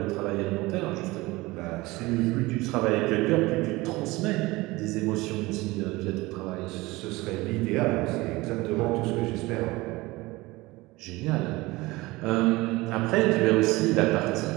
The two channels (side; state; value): left; quieter; 21.1 dB